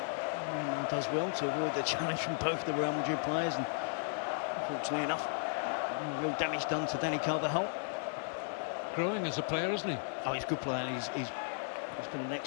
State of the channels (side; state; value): right; silent; digital silence